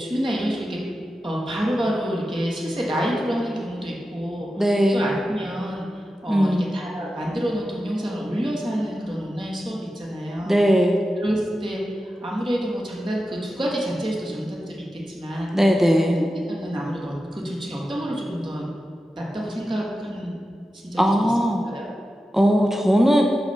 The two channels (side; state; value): both; normal; correlation 0.92